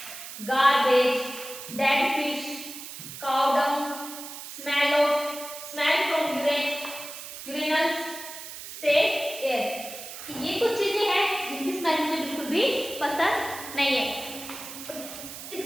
garbage, dead fish, cow dung, smell from urinals, state air. ये कुछ चीजें हैं जिनकी स्मेल मुझे बिल्कुल भी पसंद नहीं है।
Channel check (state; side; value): noise; right; hiss, 11 dB below the sound